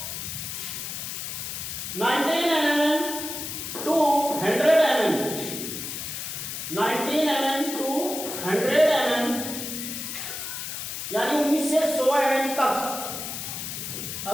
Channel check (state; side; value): noise; left; hiss, 6 dB below the sound